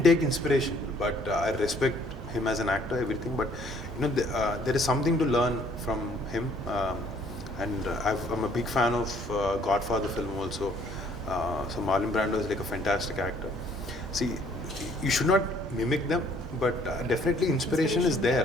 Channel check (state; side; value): normal; both; correlation 0.61